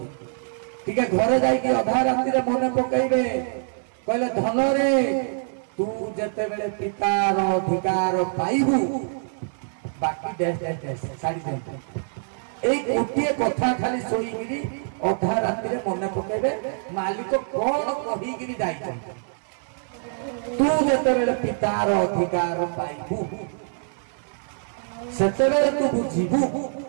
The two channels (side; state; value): left; silent; digital silence